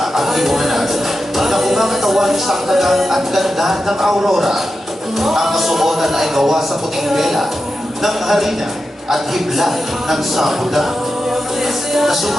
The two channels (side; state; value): both; normal; correlation 0.90